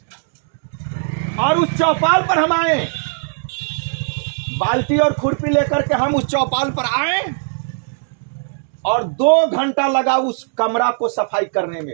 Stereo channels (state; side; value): silent; left; digital silence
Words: और उस चौपाल पर हम आए। बाल्टी और खुरपी लेकर के हम उस चौपाल पर आए और 2 घंटा लगा उस कमरा को सफाई करने